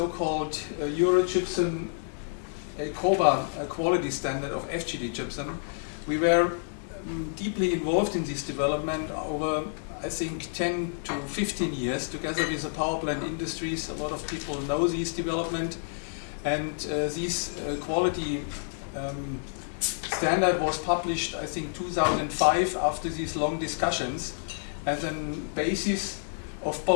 Eurogypsum COBA quality standard of FGD gypsum. We were deeply involved in this development over, I think, 10 to 15 years together with the power plant industries. A lot of people know this development, and this quality standard was published, I think, 2005 after these long discussions as a basis of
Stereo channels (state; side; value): silent; right; digital silence